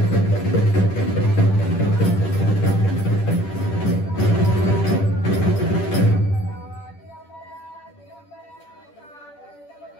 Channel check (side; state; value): right; late; 10 ms